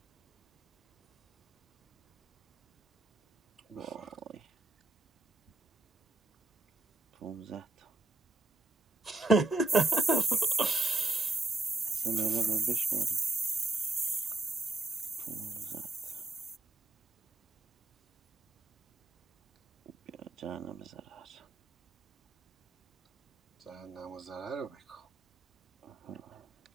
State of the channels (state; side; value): quieter; left; 3.1 dB